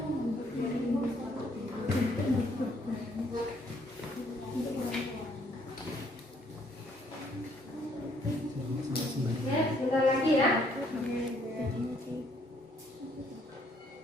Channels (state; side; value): normal; both; correlation 0.67